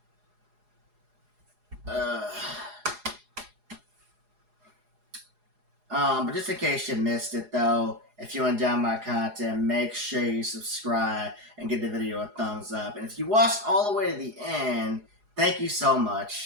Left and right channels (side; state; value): left; late; 4.8 ms